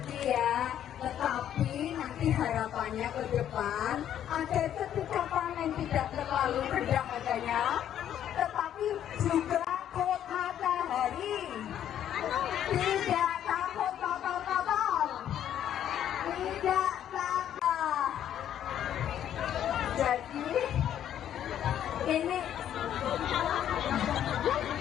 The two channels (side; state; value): right; quieter; 10.5 dB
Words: ya. Tetapi nanti harapannya ke depan agar ketika panen tidak terlalu rendah harganya, tetapi juga kuat matahari, tidak takut kotor-kotor, tidak takut. Jadi ini